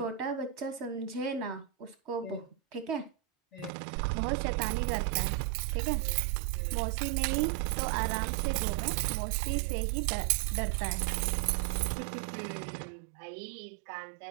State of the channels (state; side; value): drops out; left; at 3.7 s